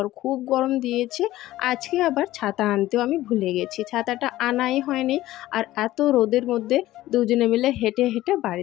আর খুব গরম দিয়েছে। আজকে আবার ছাতা আনতেও আমি ভুলে গেছি, ছাতাটা আনাই হয়নি। আর এত রোদের মধ্যে দুজনে মিলে হেঁটে হেঁটে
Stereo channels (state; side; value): quieter; right; 15.7 dB